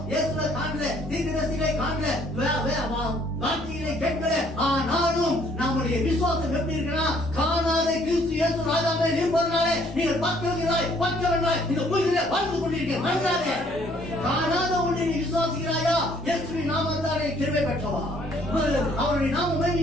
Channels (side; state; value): both; normal; correlation 0.62